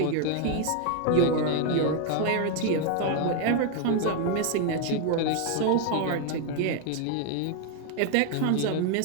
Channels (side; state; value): both; different; correlation 0.01